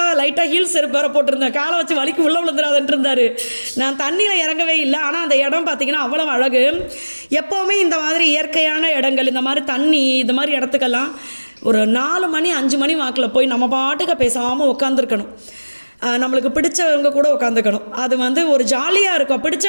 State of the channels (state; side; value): inverted; both; correlation -1.00